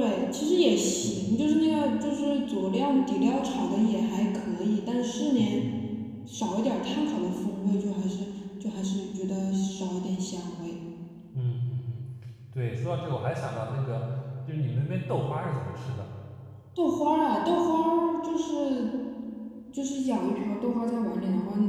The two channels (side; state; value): both; identical; correlation 1.00